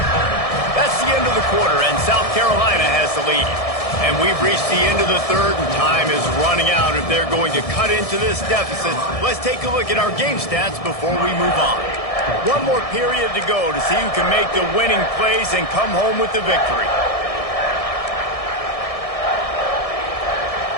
That's the end of the quarter, and South Carolina has the lead. And we've reached the end of the third, and time is running out if they're going to cut into this deficit. Let's take a look at our game stats before we move on. One more period to go to see who can make the winning plays and come home with the victory.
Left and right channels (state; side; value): late; right; 1.7 ms